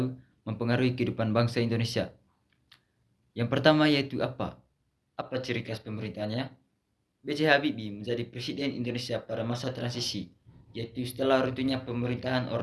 mempengaruhi kehidupan bangsa Indonesia. Yang pertama yaitu apa? Apa ciri khas pemerintahannya? B.J. Habibie menjadi Presiden Indonesia pada masa transisi, yaitu setelah runtuhnya pemerintahan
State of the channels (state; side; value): identical; both; correlation 1.00